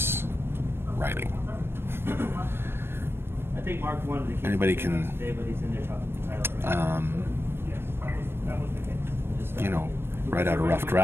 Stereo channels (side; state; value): left; late; 0.11 ms